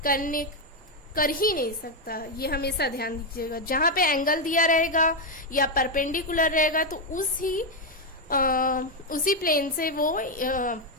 कर ही नहीं सकता। ये हमेशा ध्यान दीजिएगा, जहां पे एंगल दिया रहेगा या परपेंडिकुलर रहेगा तो उसी प्लेन से वो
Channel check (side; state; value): both; normal; correlation 0.04